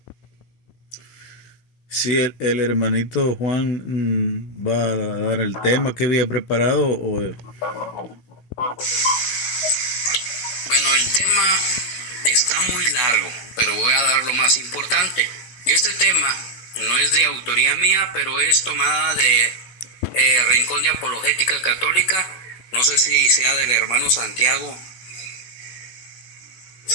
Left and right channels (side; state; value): right; late; 16 ms